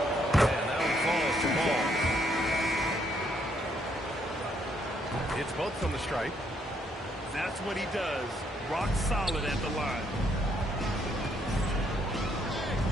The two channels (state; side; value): normal; both; correlation 0.72